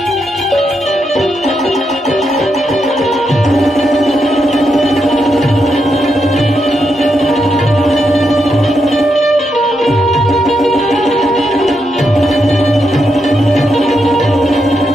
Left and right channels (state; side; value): normal; both; correlation 0.82